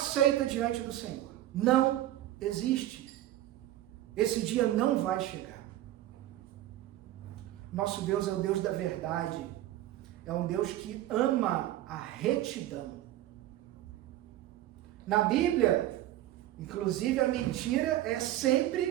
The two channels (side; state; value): left; quieter; 13.9 dB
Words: diante do Senhor. Não existe. Esse dia não vai chegar. Nosso Deus é o Deus da verdade. É um Deus que ama a retidão. Na Bíblia, inclusive, a mentira é